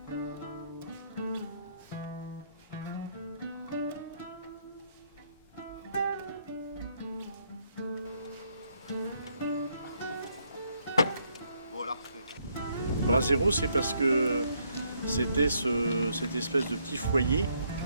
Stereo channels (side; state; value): both; inverted; correlation -0.72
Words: Brasero, c'est parce que c'était cette espèce de petit foyer